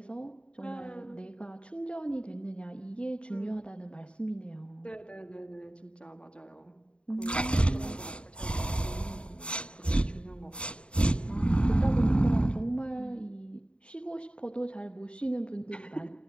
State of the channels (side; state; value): right; late; 0.056 ms